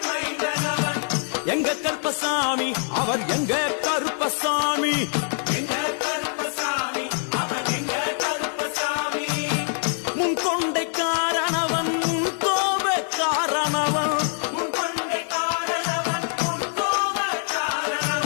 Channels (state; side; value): silent; right; 58 dB below the other